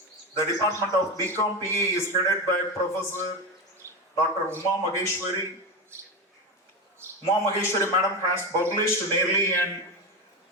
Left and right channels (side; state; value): both; normal; correlation 0.18